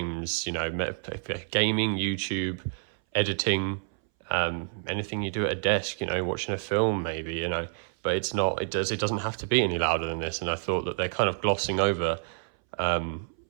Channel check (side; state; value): left; silent; 59 dB below the other